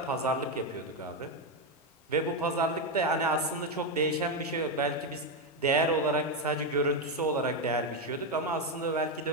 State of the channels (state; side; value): normal; both; correlation 0.07